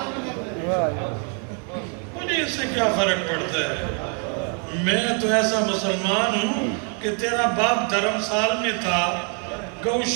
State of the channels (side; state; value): left; quieter; 39.7 dB